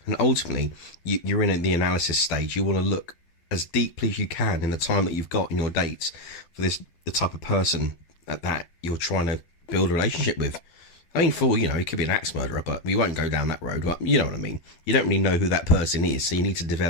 And ultimately, you're in the analysis stage. You want to look as deeply as you can in the time that you've got in your dates for the type of person that you're trying to build a relationship with. I mean, he could be an axe murderer, but we won't go down that road. But you know what I mean. You don't really know who that person is, so you need to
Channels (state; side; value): late; right; 12 ms